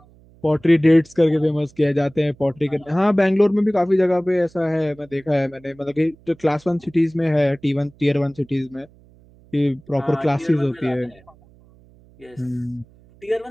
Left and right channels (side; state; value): right; noise; hum, 27 dB below the sound